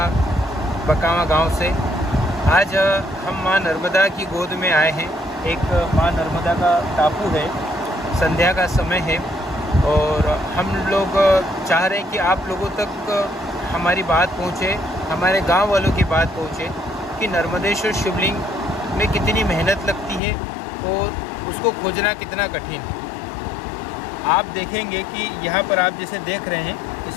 बकावा गांव से। आज हम माँ नर्मदा की गोद में आए हैं। एक माँ नर्मदा का टापू है, संध्या का समय है और हम लोग चाह रहे हैं कि आप लोगों तक हमारी बात पहुँचे, हमारे गांव वालों की बात पहुँचे कि नर्मदेश्वर शिवलिंग में कितनी मेहनत लगती है और उसको खोजना कितना कठिन है। आप देखेंगे कि यहाँ पर आप जैसे देख रहे हैं,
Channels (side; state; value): right; drops out; at 20.2 s